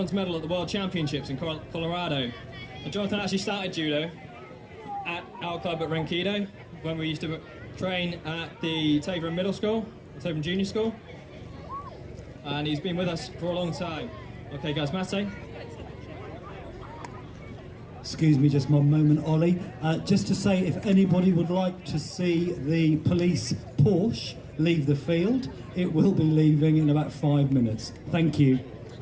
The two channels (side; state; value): both; identical; correlation 1.00